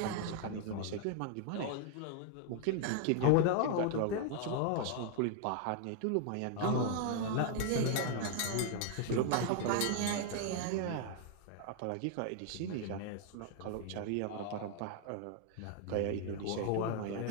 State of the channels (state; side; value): different; both; correlation 0.00